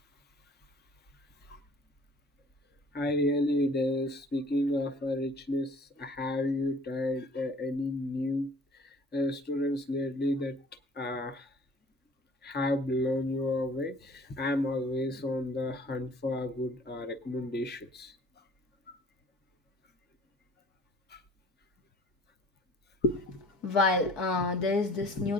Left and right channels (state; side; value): normal; both; correlation 0.51